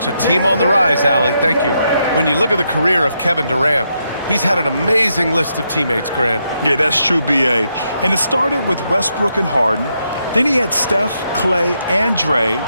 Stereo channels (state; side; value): inverted; both; correlation -0.80